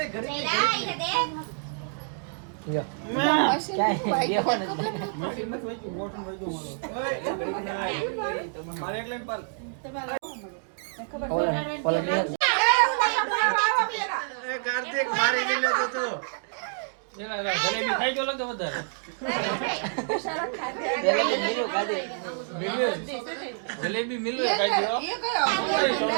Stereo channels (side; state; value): left; silent; digital silence